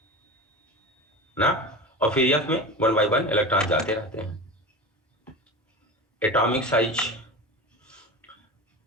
ना. और फिर F में 1 by 1 इलेक्ट्रॉन जाते रहते हैं. एटॉमिक साइज,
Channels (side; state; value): both; normal; correlation 0.29